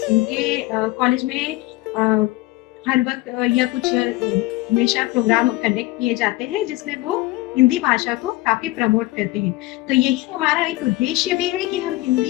इनके कॉलेज में हर वक्त या कुछ हमेशा प्रोग्राम कंडक्ट किए जाते हैं जिसमें वो हिंदी भाषा को काफी प्रमोट करते हैं। तो यही हमारा एक उद्देश्य भी है कि हम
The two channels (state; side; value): quieter; right; 19.1 dB